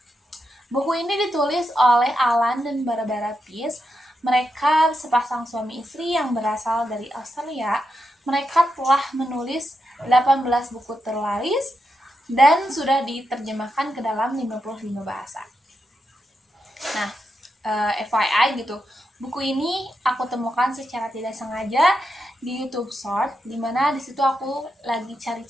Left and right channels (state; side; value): normal; both; correlation 0.85